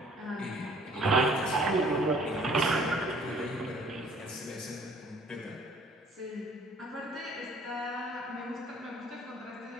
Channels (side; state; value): both; normal; correlation 0.56